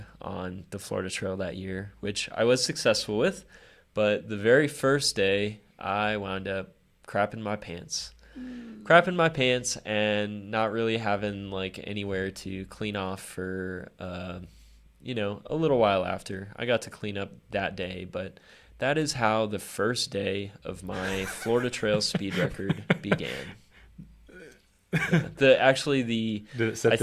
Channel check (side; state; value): both; identical; correlation 1.00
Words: on the Florida Trail that year, which I was successful with. But the very first day, I wound up crapping my pants and not really having like anywhere to clean off for, a little while after. I got to clean up that day, but that is how the first day of my Florida Trail speed record began. Did it set